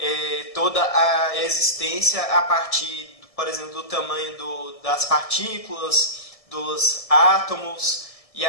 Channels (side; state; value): right; late; 1.6 ms